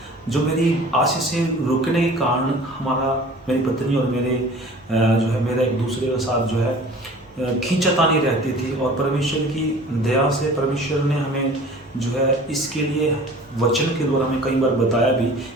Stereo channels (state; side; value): normal; both; correlation 0.45